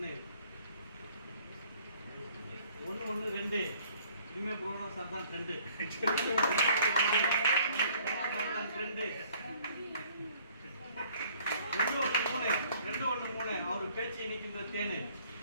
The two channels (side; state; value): both; inverted; correlation -0.59